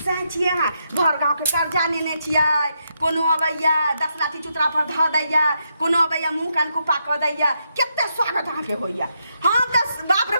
सह छियै अहाँ घर गाँव के कर्जा लेने छियै कोनो अबैया 10 लाठी चुतरा पर ध दैया कोनो अबैया मुंह कान कुपा क दैया केते स्वागत अहाँ के होइया हम त बाप रे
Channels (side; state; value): both; inverted; correlation -0.81